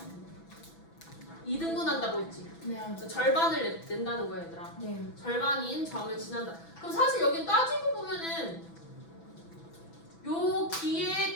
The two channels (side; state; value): right; late; 6.0 ms